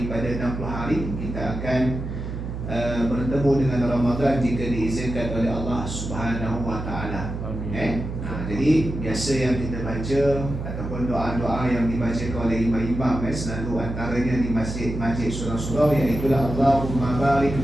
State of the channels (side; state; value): right; noise; hum, 6 dB below the sound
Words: 60 hari kita akan bertemu dengan Ramadan jika diizinkan oleh Allah Subhanahu wa taala. Jadi biasa yang kita baca ataupun doa-doa yang dibacakan oleh imam-imam selalu antaranya di masjid-masjid surau-surau, iaitu Allahumma barik